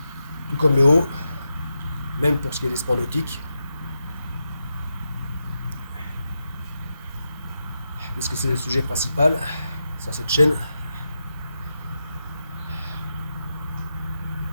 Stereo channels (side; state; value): both; inverted; correlation -0.88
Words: comme le haut, même pour ce qui est des sports nautiques, puisque c'est le sujet principal sur cette chaîne.